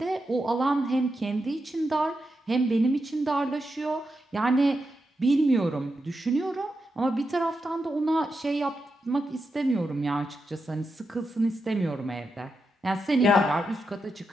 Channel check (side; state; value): both; normal; correlation 0.87